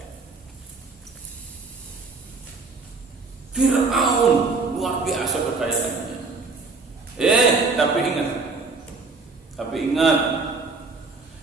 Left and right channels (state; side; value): quieter; left; 4.1 dB